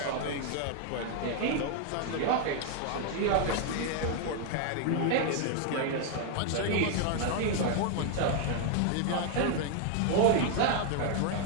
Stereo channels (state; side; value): different; both; correlation 0.00